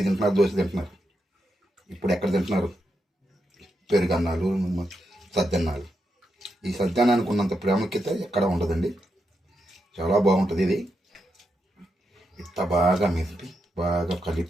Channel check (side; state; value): both; normal; correlation 0.84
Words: తింటున్నారు, దోశ తింటున్నారు. ఇప్పుడు ఎక్కడ తింటున్నారు? పెరుగన్నాలు, సద్దన్నాలు. ఈ సద్దన్నానికి ఉన్నంత ప్రాముఖ్యత ఎక్కడ ఉండదండి. చాలా బాగుంటుంది. ఇది ఇంత బాగా మెదిపి బాగా